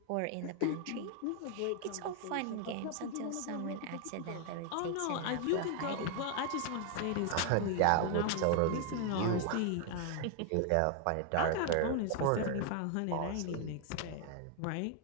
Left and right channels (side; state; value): both; different; correlation 0.00